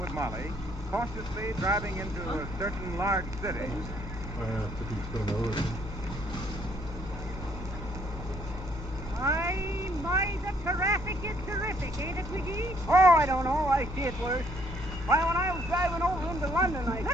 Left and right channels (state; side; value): normal; both; correlation 0.67